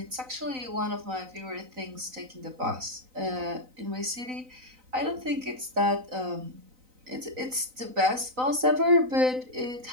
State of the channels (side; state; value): left; late; 3.9 ms